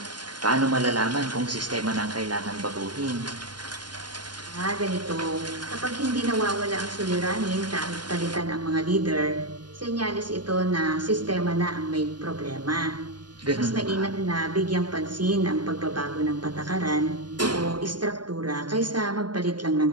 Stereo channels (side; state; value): left; late; 0.71 ms